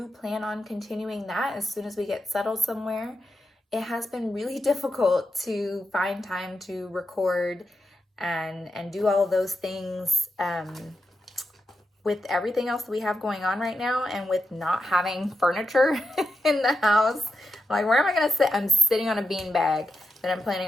plan on continuing that as soon as we get settled somewhere. It has been really difficult to find time to record and do all of those things with everything else that we have going on right now, and with not having furniture in the house. Like, where am I going to sit? I'm sitting on a beanbag that I'm planning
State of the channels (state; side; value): normal; both; correlation 0.87